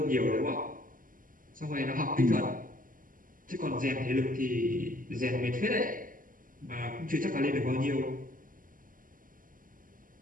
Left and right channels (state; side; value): late; left; 0.40 ms